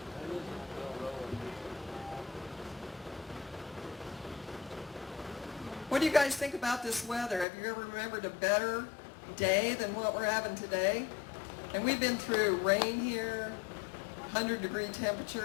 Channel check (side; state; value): right; drops out; at 7.5 s